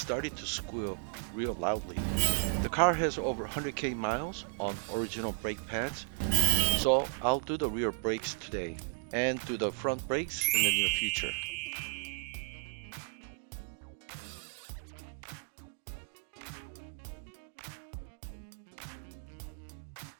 to squeal real loudly. The car has over 100k miles on original brake pads, so I'll do the rear brakes today and do the front brakes in the near future.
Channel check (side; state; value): left; silent; digital silence